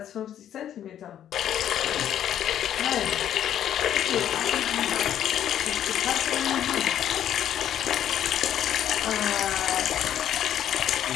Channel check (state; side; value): quieter; right; 10.5 dB